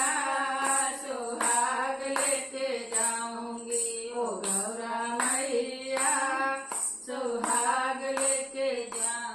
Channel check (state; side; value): identical; both; correlation 1.00